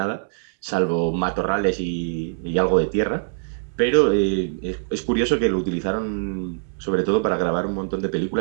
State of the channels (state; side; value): silent; left; 63 dB below the other